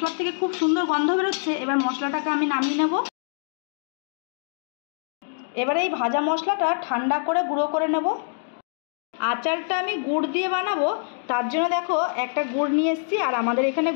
থেকে খুব সুন্দর গন্ধ বেরোচ্ছে। এবার মশলাটাকে আমি নামিয়ে নেব। এবারে এই ভাজা মশলাটা ঠান্ডা করে গুঁড়ো করে নেব। আচারটা আমি গুড় দিয়ে বানাবো, তার জন্য দেখো একটা গুড় নিয়ে এসেছি। আর আমাদের এখানে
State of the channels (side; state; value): right; silent; digital silence